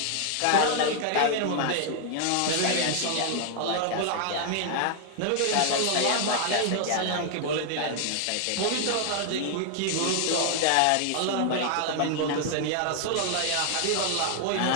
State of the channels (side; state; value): both; different; correlation 0.00